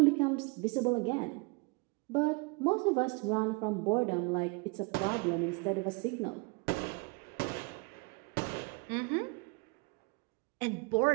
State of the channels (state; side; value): quieter; left; 29.8 dB